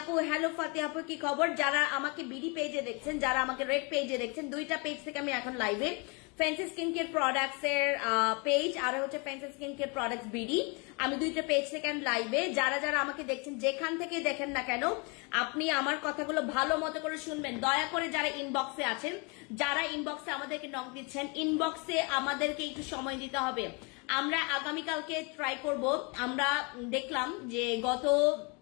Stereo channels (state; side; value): quieter; right; 31.8 dB